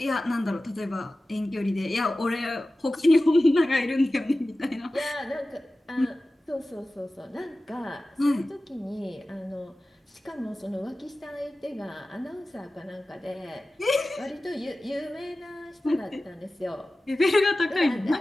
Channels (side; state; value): both; normal; correlation 0.96